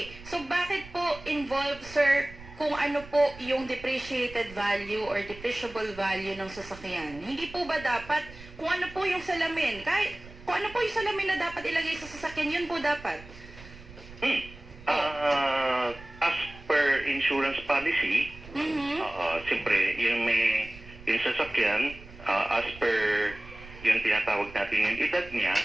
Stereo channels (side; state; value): right; noise; rumble, 18 dB below the sound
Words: so bakit po involved, sir, kung ano po yung depreciated value or depreciable value ng sasakyan? Hindi po ba dapat, kung ano po yung salamin, kahit kung ano po yung salamin na dapat ilagay sa sasakyan, yun po dapat? As per insurance policy, siyempre, yung sasakyan, as per yung tinatawag natin yung edad niya,